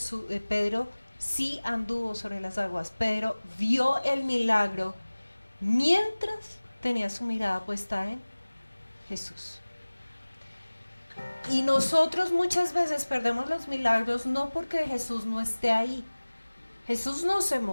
Pedro sí anduvo sobre las aguas. Pedro vio el milagro mientras tenía su mirada puesta en Jesús. Y nosotros muchas veces perdemos los milagros no porque Jesús no esté ahí. Jesús no se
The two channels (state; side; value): inverted; both; correlation -1.00